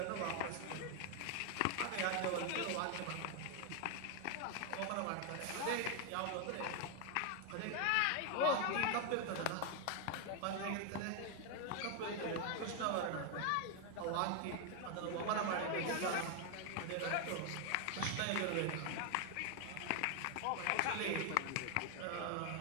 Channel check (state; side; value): different; both; correlation 0.01